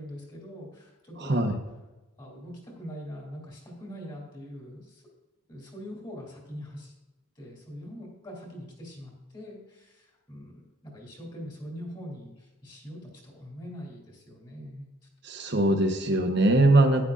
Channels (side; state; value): both; normal; correlation 0.68